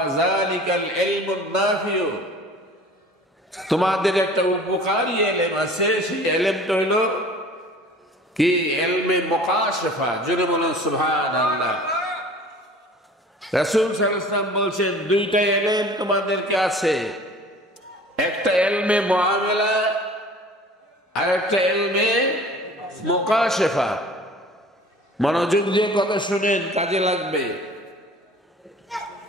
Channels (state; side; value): normal; both; correlation 0.45